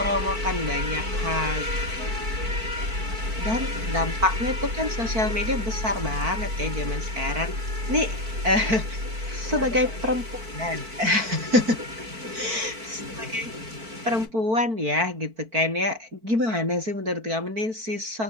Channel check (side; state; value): left; late; 4.5 ms